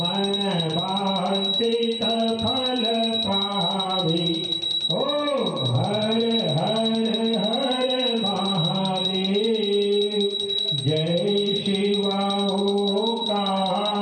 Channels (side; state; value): both; identical; correlation 1.00